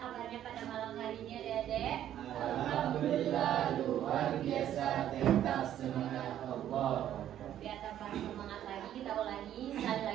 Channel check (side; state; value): left; quieter; 11.3 dB